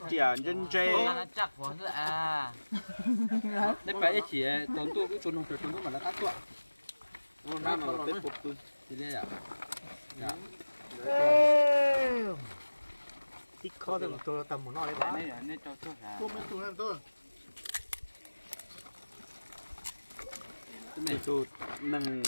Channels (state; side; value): inverted; both; correlation -1.00